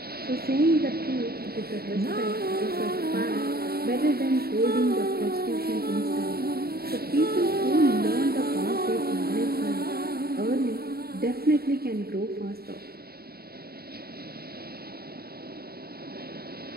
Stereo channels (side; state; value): left; late; 0.45 ms